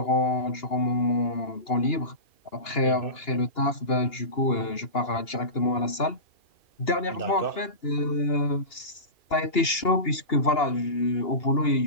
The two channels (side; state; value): right; late; 2.8 ms